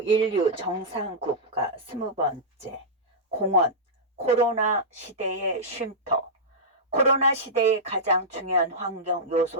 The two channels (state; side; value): normal; both; correlation -0.12